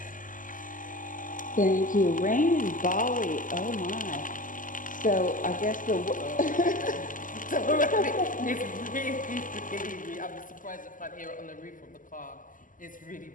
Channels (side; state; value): right; late; 0.38 ms